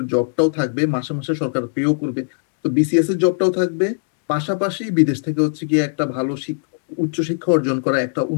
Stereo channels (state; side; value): silent; right; digital silence